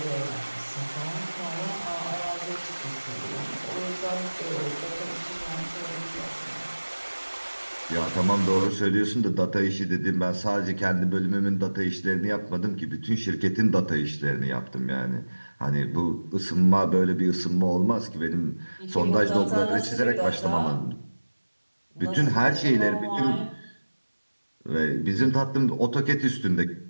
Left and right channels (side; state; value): both; inverted; correlation -1.00